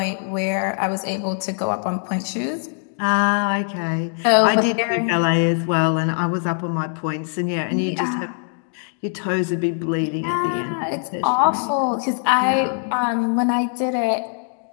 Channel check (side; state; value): right; silent; 63 dB below the other